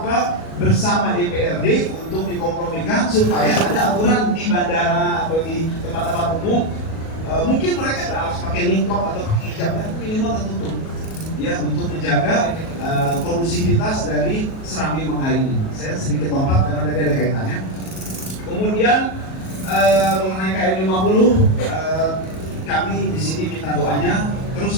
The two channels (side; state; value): right; late; 37 ms